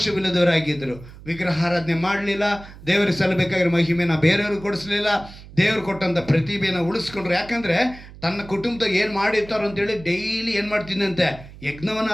ವಿಗ್ರಹಾರಾಧನೆ ಮಾಡಲಿಲ್ಲ, ದೇವರಿಗೆ ಸಲ್ಲಬೇಕಾಗಿರೋ ಮಹಿಮೆನ ಬೇರೆಯವ್ರಿಗೆ ಕೊಡಿಸ್ಲಿಲ್ಲ, ದೇವರು ಕೊಟ್ಟಂಥ ಪ್ರತಿಭೆನ ಉಳಿಸ್ಕೊಂಡ್ರು. ಯಾಕಂದರೆ ತನ್ನ ಕುಟುಂಬದಾಗ ಏನು ಮಾಡಿರ್ತಾರೋ ಅಂತೇಳಿ ಡೈಲಿ ಏನು ಮಾಡ್ತಿದ್ದಂತೆ? ಯಜ್ಞವನ್ನು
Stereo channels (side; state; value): right; noise; hum, 18 dB below the sound